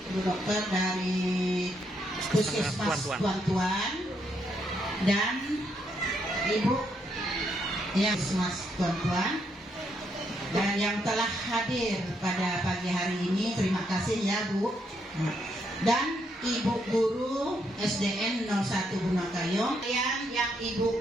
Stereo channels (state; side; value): normal; both; correlation 0.76